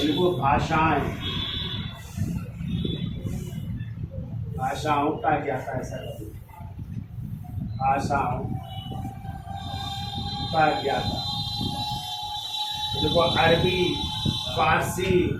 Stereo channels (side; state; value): both; identical; correlation 1.00